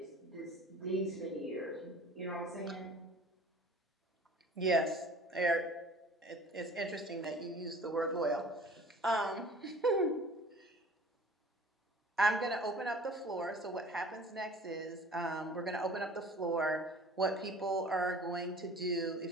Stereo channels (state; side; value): normal; both; correlation 0.46